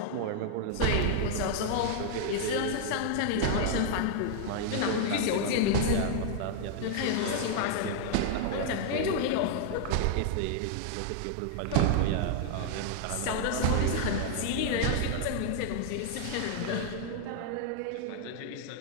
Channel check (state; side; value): different; both; correlation 0.00